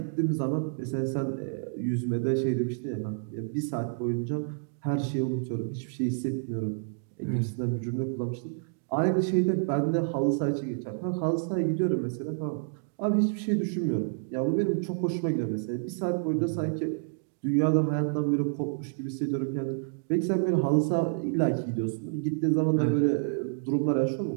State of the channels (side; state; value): left; silent; digital silence